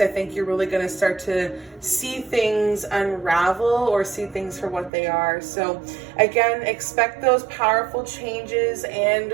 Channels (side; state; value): left; drops out; at 4.9 s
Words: I think you're really going to start to see things unravel, or see things for what they are. So again, expect those powerful changes and